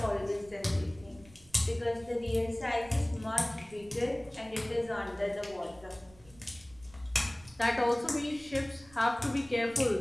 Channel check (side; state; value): right; noise; rumble, 24 dB below the sound